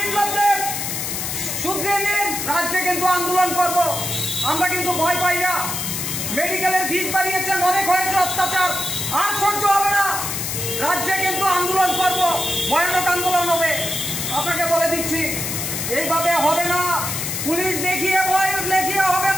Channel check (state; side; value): noise; left; hiss, 3 dB below the sound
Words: শুধরিয়ে নিন, রাজ্যে কিন্তু আন্দোলন করব। আমরা কিন্তু ভয় পাই না। মেডিকেলের ফিস বাড়িয়েছেন, অনেক হয়েছে অত্যাচার, আর সহ্য হবে না। রাজ্যে কিন্তু আন্দোলন করব, ভয়ানক আন্দোলন হবে। আপনাকে বলে দিচ্ছি, এইভাবে হবে না। পুলিশ দেখিয়ে ভয় দেখিয়ে হবে